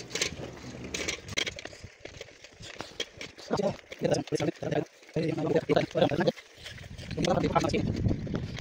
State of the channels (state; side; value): identical; both; correlation 1.00